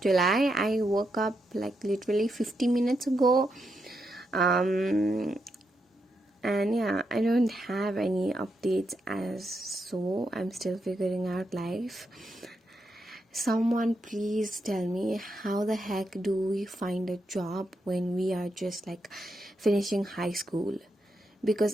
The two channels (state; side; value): normal; both; correlation 0.83